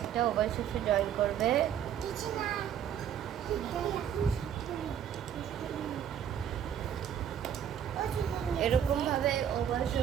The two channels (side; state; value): left; quieter; 9.2 dB